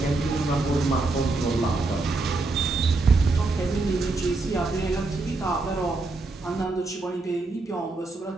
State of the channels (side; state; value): left; quieter; 3.4 dB